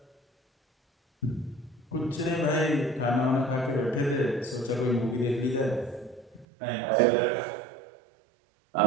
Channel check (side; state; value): left; drops out; at 6.5 s